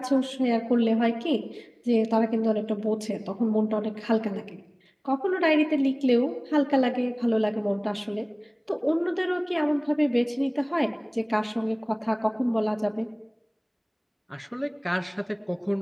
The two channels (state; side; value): identical; both; correlation 1.00